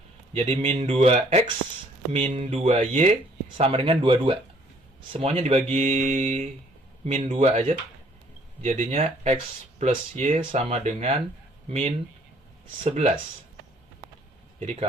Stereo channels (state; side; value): normal; both; correlation 0.61